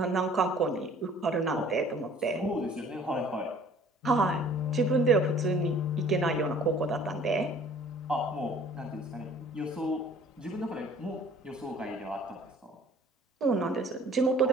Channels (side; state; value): both; normal; correlation 0.52